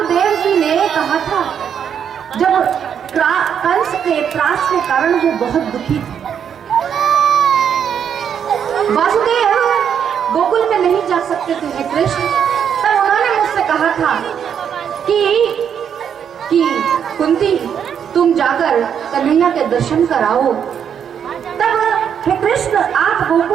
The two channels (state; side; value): quieter; left; 8.1 dB